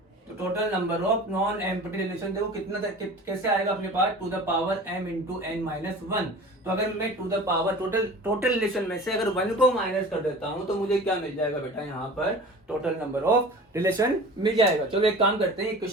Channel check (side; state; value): both; normal; correlation 0.39